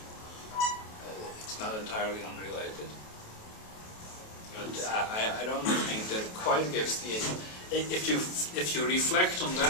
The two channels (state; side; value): late; right; 28 ms